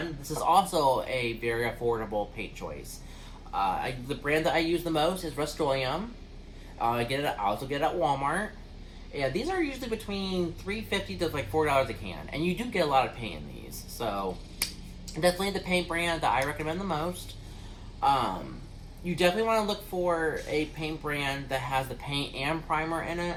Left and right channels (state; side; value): identical; both; correlation 1.00